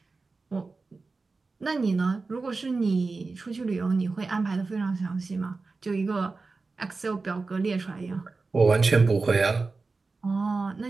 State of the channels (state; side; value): quieter; left; 3.9 dB